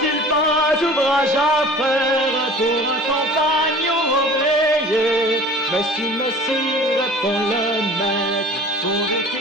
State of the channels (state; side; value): normal; both; correlation 0.44